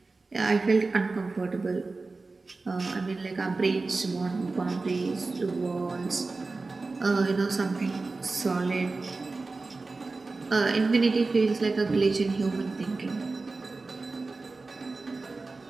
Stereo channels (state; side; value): quieter; left; 3.7 dB